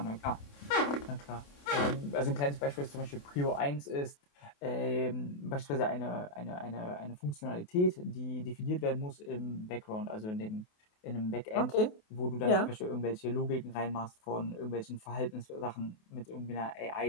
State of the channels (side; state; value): right; late; 28 ms